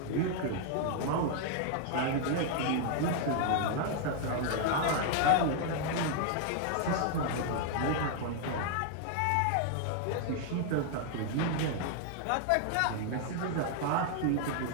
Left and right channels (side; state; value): both; different; correlation 0.00